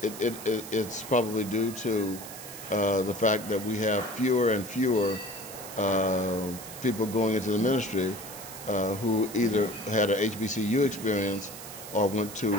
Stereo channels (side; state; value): right; noise; hiss, 12 dB below the sound